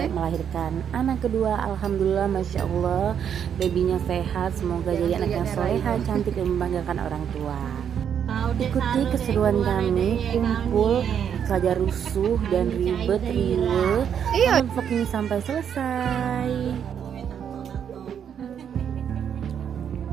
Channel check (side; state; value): left; quieter; 8.4 dB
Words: melahirkan anak kedua. Alhamdulillah, Masya Allah, babynya sehat. Semoga jadi anak yang soleha, cantik dan membanggakan orang tua. Ikuti keseruan kami, kumpul saja rusuh dan ribet riwe. Vlog ini sampai selesai.